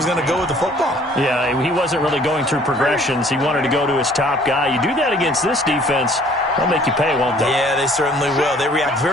going to go with the football. Yeah, he wasn't really going through progressions. He wanted to go to his top guy. You do that against this defense, they'll make you pay, won't they? Yeah, they certainly will. They react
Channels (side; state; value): both; normal; correlation 0.56